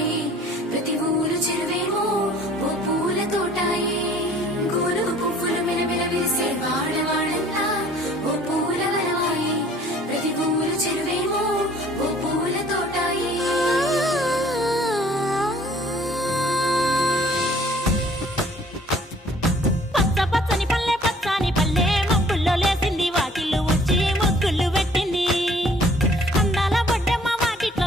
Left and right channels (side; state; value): both; normal; correlation 0.55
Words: ప్రతి ఊరు చెరువేమో ఓ పూల తోటాయే గోరుగు పువ్వులు మెలమెల మెరిసే వాడవాడంతా ఓ పూల వనమాయే ప్రతి ఊరు చెరువేమో ఓ పూల తోటాయే